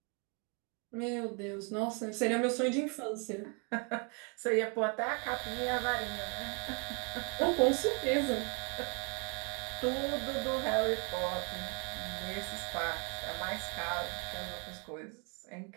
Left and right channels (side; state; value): left; quieter; 35.2 dB